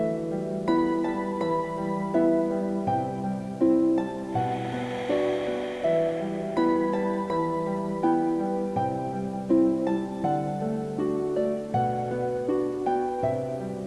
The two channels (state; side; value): identical; both; correlation 1.00